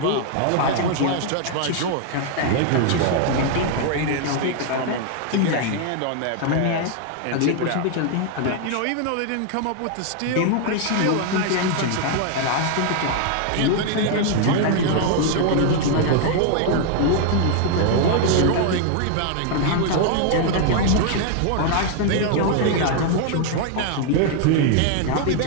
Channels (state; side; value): different; both; correlation 0.00